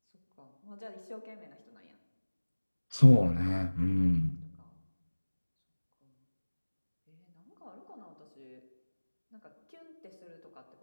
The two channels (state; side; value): inverted; both; correlation -1.00